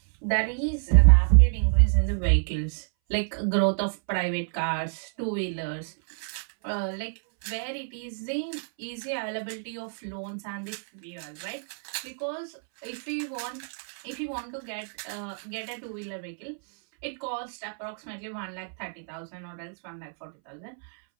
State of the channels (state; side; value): silent; left; 59 dB below the other